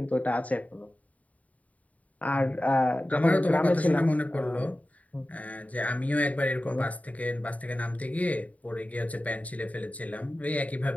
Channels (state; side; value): late; right; 0.070 ms